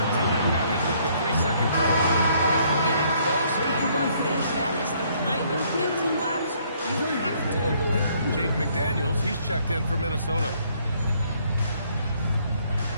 time. Got hit with the 3-second call. In a close game like this, that is the kind of mental lapse you have to avoid. Jake McDaniels, he's checked in for Minnesota.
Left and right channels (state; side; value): inverted; both; correlation -0.66